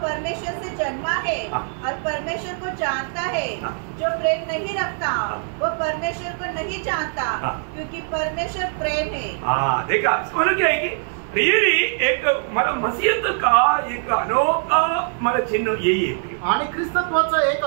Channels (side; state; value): left; silent; 55 dB below the other